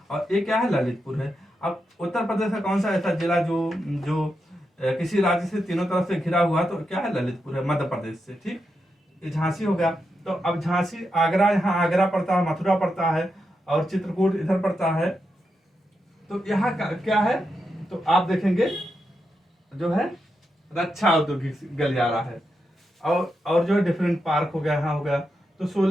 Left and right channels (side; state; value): both; normal; correlation 0.86